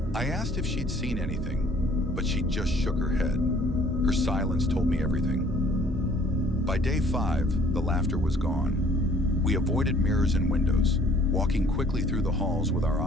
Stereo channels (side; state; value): both; normal; correlation 0.57